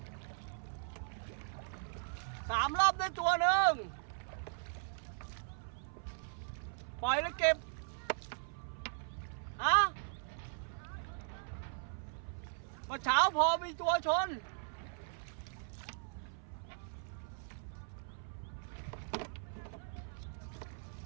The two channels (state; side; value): silent; left; 52 dB below the other